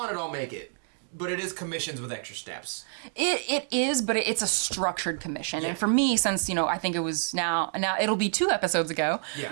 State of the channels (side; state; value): left; silent; digital silence